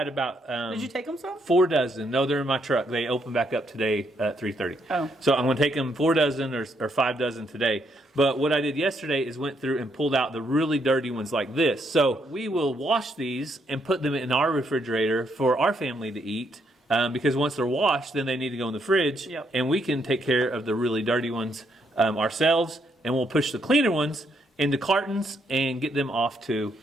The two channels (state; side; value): normal; both; correlation 0.74